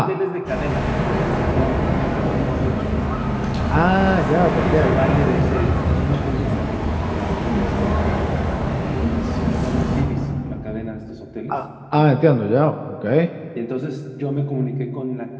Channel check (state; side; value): identical; both; correlation 1.00